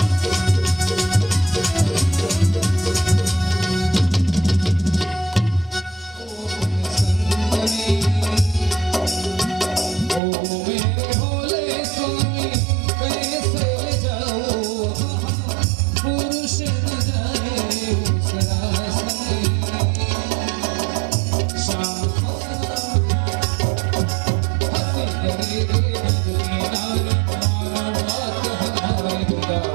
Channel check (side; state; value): left; drops out; at 10.2 s